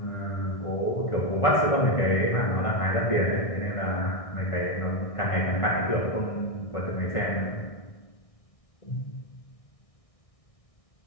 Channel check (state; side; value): late; right; 1.6 ms